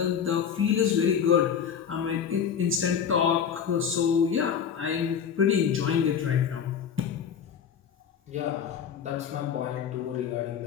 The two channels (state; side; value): quieter; right; 7.8 dB